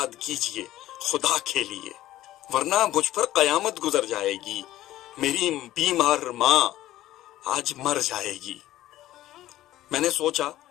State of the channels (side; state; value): right; quieter; 14.5 dB